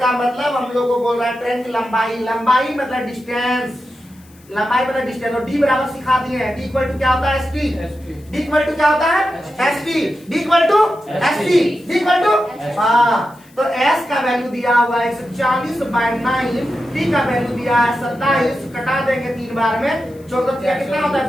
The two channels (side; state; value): left; noise; hiss, 28 dB below the sound